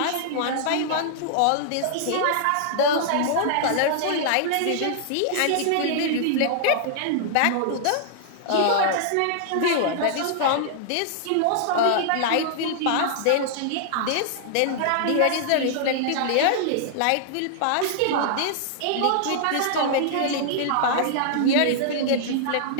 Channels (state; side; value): different; both; correlation -0.01